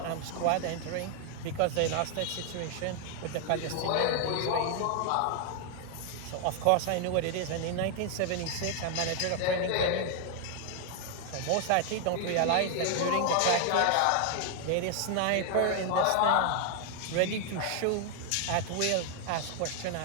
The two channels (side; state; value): both; different; correlation 0.00